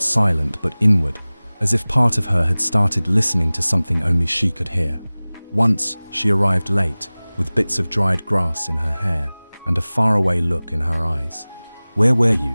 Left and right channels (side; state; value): both; inverted; correlation -0.99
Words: silent but inward, as if part of her had started listening to something only she could hear. Once, she arrived late, with bits of dried grass in her hair and a faraway look in her eyes. "Where were